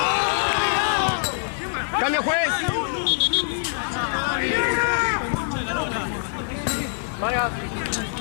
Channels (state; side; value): silent; right; 63 dB below the other